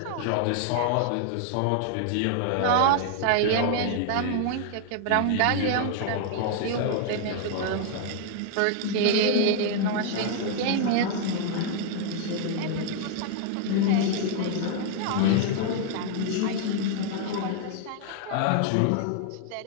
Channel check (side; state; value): both; different; correlation 0.00